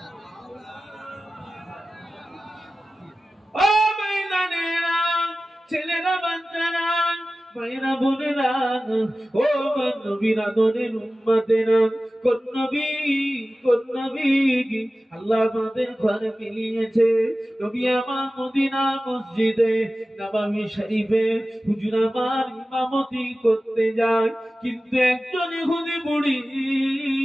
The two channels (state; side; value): normal; both; correlation 0.95